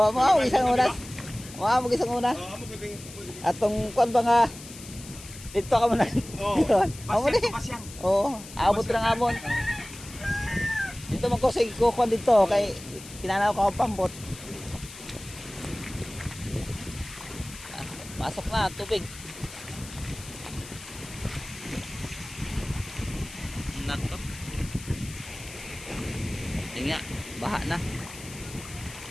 mo isang oras. Mo isang una. Oo, amo gabing. Atong kuan ba nga dito ka muna. Oo. Amo ni. Pasyang. Oo, abot ra nga amon. Dito man ko sige ko kuan dito kay kinanaw ko ang pambot. Pasok na tubig. Nako. Tingnan, baha na.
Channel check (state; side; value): noise; left; hiss, 15 dB below the sound